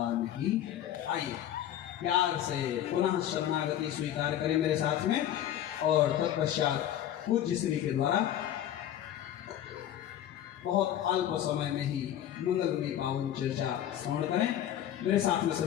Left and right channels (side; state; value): right; quieter; 11.3 dB